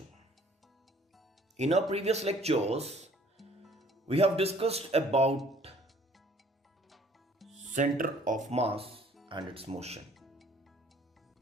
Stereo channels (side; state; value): both; normal; correlation 0.57